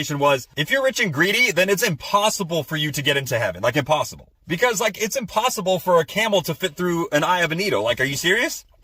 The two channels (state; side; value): identical; both; correlation 1.00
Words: was, if you're rich and greedy, then it's impossible for you to get into heaven. Like impossible. Because it's impossible for a camel to fit through an eye of a needle. Like, are you serious?